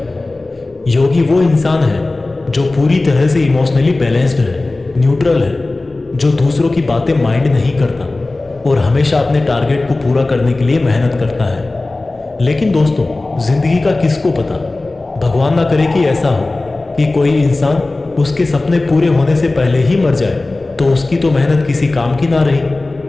योगी वो इंसान है जो पूरी तरह से इमोशनली बैलेंस्ड है, न्यूट्रल है, जो दूसरों की बातें माइंड नहीं करता और हमेशा अपने टारगेट को पूरा करने के लिए मेहनत करता है। लेकिन दोस्तों, जिंदगी का किसको पता, भगवान ना करे कि ऐसा हो कि कोई इंसान उसके सपने पूरे होने से पहले ही मर जाए, तो उसकी तो मेहनत किसी काम की ना रही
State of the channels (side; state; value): right; quieter; 3.1 dB